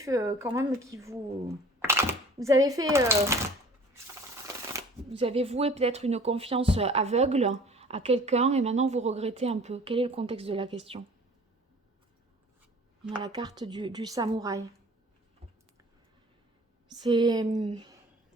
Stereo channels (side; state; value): both; normal; correlation 0.47